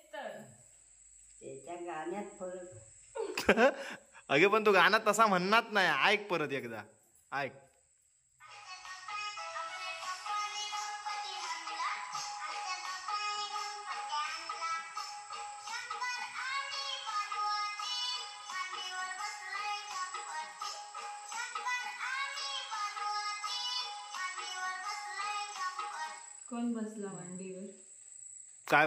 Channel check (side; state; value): both; identical; correlation 1.00